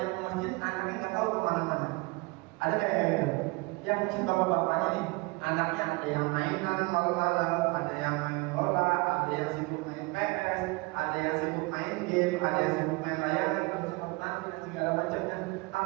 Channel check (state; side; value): quieter; left; 25.6 dB